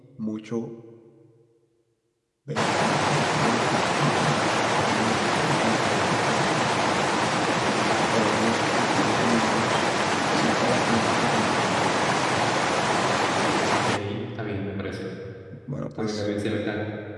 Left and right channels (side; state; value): both; identical; correlation 1.00